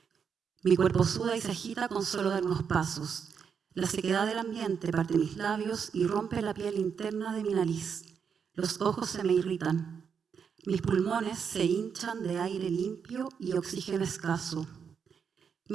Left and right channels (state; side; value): quieter; left; 6.8 dB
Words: Mi cuerpo suda y se agita con solo dar unos pasos. La sequedad del ambiente parte mis labios y rompe la piel interna de mi nariz. Los ojos se me irritan. Mis pulmones se hinchan de aire limpio y oxígeno escaso.